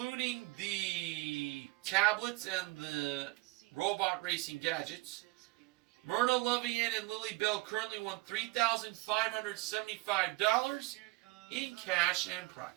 the tablets and the robot racing gadgets, Myrna, Lovey-Ann, and Lily Bell currently won $3,575 in cash and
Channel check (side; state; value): left; quieter; 23.0 dB